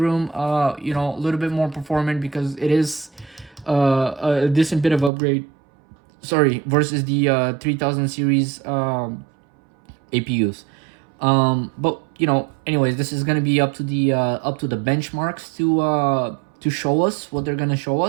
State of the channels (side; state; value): left; drops out; at 5.1 s